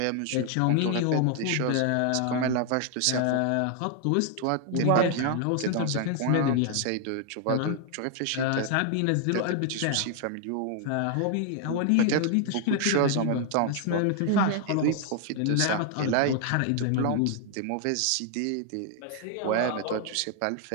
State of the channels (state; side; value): different; both; correlation 0.00